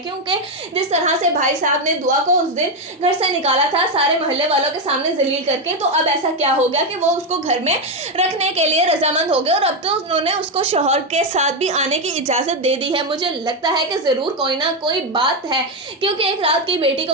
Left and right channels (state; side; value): normal; both; correlation 0.07